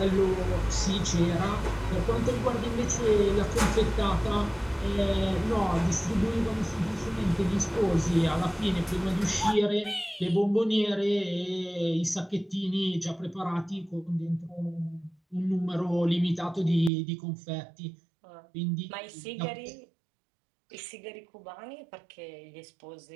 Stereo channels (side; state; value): left; drops out; at 16.9 s